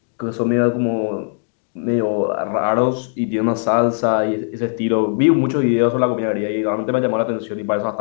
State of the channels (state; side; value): silent; right; digital silence